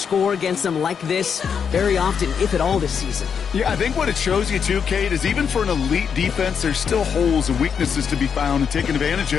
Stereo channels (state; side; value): quieter; right; 6.9 dB